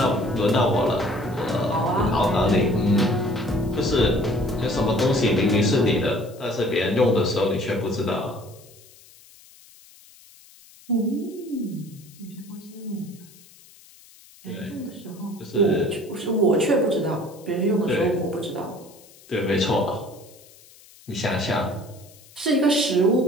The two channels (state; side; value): noise; left; hiss, 24 dB below the sound